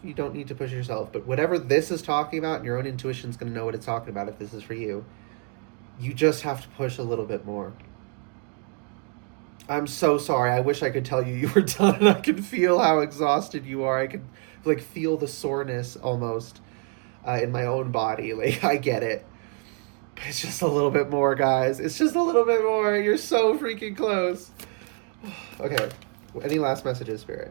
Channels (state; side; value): quieter; left; 38.1 dB